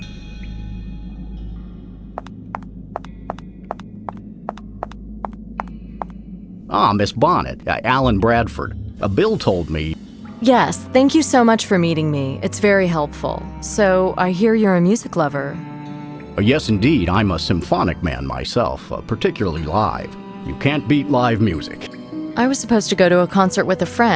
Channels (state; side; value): identical; both; correlation 1.00